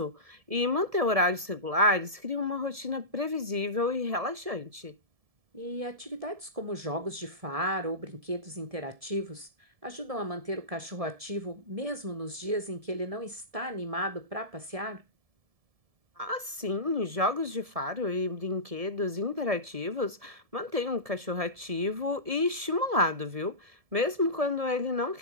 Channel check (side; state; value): left; late; 1.7 ms